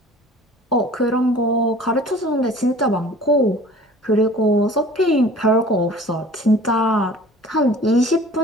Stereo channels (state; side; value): normal; both; correlation 0.46